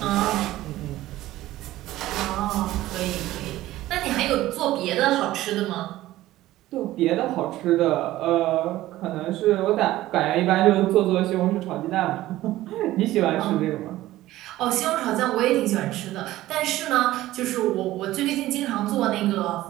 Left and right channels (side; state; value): left; quieter; 15.7 dB